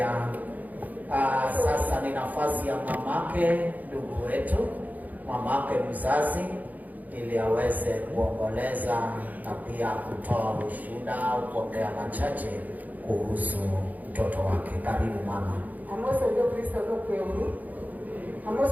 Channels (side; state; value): left; late; 0.079 ms